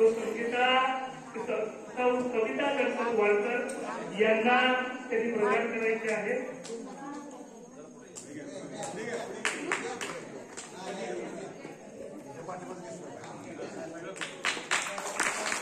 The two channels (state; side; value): identical; both; correlation 1.00